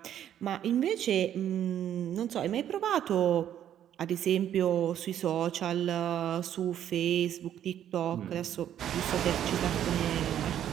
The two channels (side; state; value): left; quieter; 10.5 dB